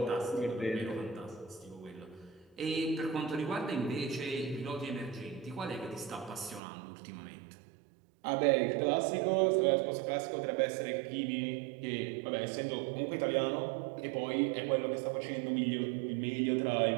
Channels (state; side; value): drops out; left; at 6.6 s